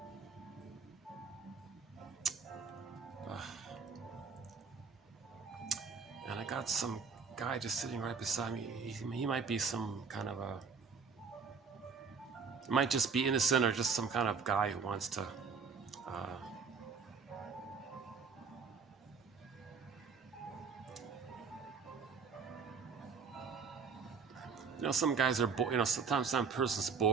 And I got some guy just sitting right beside me. He might be some kind of it might just be innocent or just some kind of guy who wants to some guys are bored. Sometimes some person's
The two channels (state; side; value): quieter; left; 5.5 dB